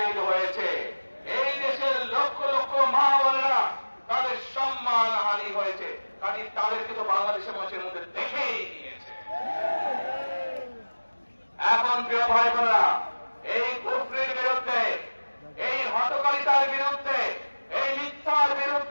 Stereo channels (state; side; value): inverted; both; correlation -1.00